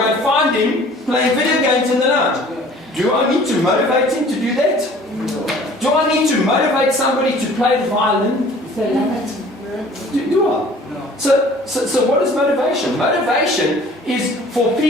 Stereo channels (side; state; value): both; normal; correlation 0.50